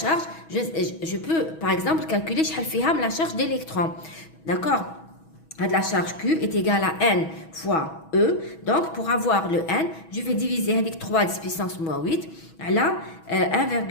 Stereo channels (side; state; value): right; late; 6.2 ms